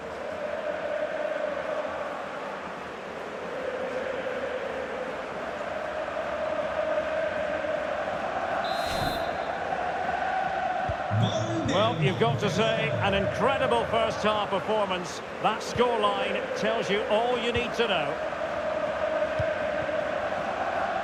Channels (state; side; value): identical; both; correlation 1.00